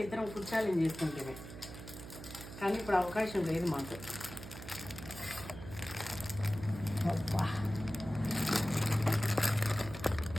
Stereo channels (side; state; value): right; noise; hum, 12 dB below the sound